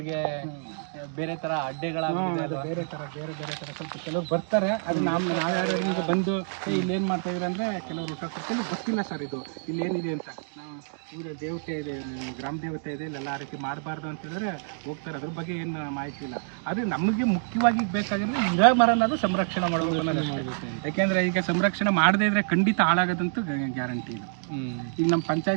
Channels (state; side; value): silent; left; digital silence